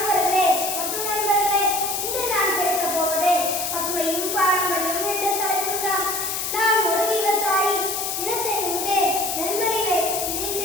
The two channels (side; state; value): left; noise; hiss, 2 dB below the sound